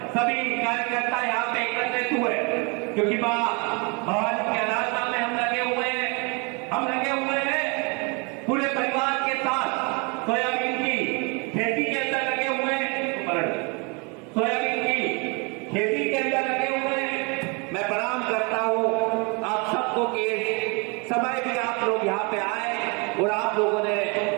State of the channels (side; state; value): left; quieter; 31.7 dB